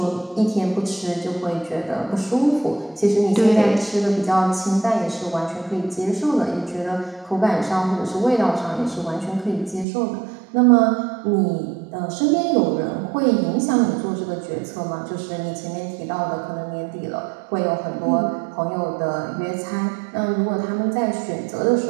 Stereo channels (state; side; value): drops out; left; at 9.9 s